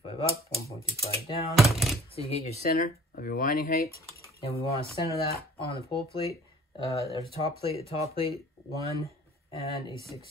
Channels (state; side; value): normal; both; correlation 0.51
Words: up, 1.25 down. So you get your center of your winding height. And we want to center that on the pole plate. There's the top plate, 1 and a